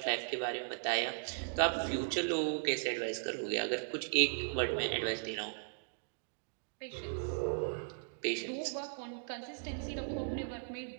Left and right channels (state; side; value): silent; left; digital silence